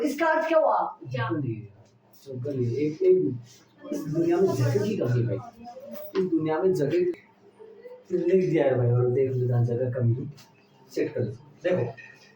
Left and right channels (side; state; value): both; identical; correlation 1.00